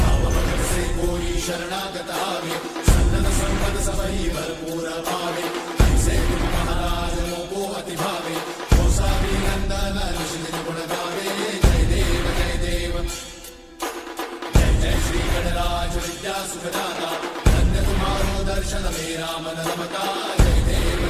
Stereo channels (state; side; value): identical; both; correlation 1.00